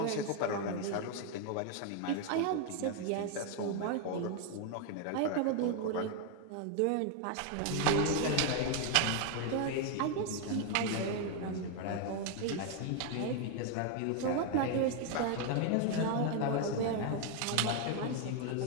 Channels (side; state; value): both; different; correlation 0.00